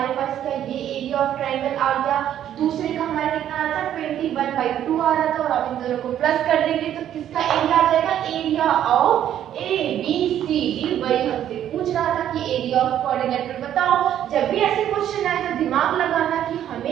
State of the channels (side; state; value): left; quieter; 10.8 dB